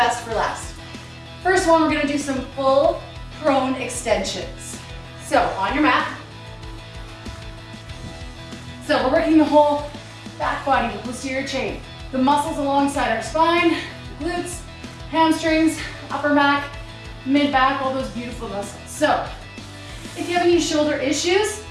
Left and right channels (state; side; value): identical; both; correlation 1.00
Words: for last. First one, we're gonna do some full prone extensions. So on your mat. So we're working the whole back body, the posterior chain. The muscles alongside our spine, glutes, hamstrings, upper back, mid back, all those beautiful muscles. So if you have any shoulder issues,